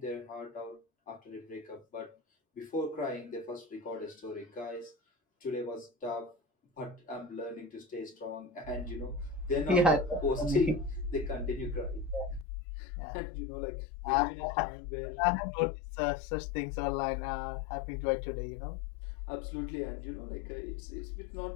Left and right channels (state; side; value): drops out; right; at 12.5 s